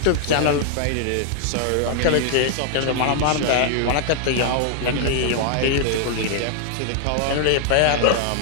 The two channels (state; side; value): different; both; correlation -0.01